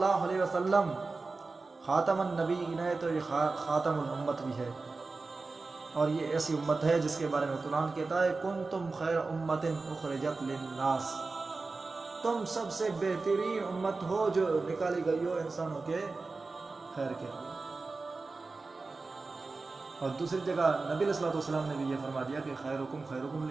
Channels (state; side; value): quieter; left; 3.8 dB